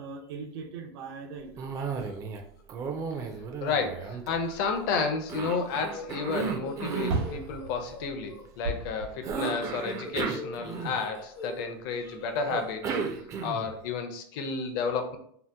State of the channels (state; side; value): normal; both; correlation 0.15